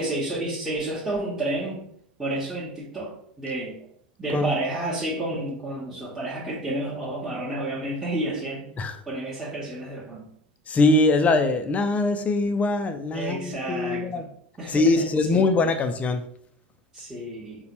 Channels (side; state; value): both; normal; correlation 0.44